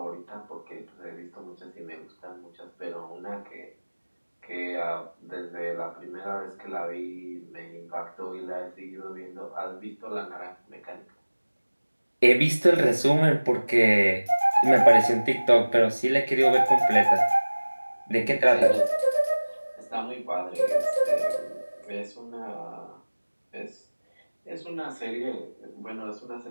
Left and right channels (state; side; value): inverted; both; correlation -1.00